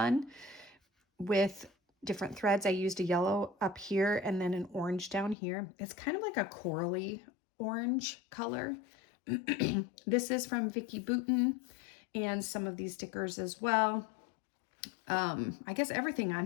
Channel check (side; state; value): right; drops out; at 5.4 s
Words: with different threads. I used a yellow up here and then an orange down here. It's kind of like a corally orange color. This is from Vicki Boutin, and some of these stickers as well. I guess everything on